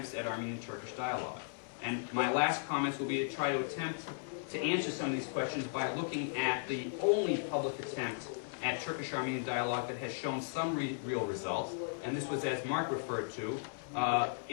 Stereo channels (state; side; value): silent; right; 54 dB below the other